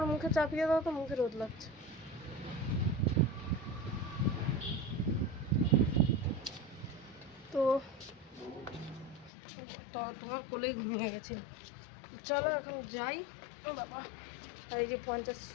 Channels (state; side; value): drops out; right; at 9.3 s